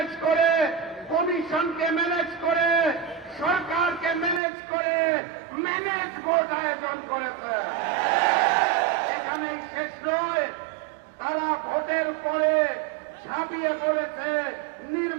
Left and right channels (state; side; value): drops out; left; at 4.4 s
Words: করে, কমিশনকে ম্যানেজ করে, সরকারকে ম্যানেজ করে ম্যানেজ ভোট আয়োজন করেছে। এখানেই শেষ নয়, তারা ভোটের পরে ঝাঁপিয়ে পড়েছে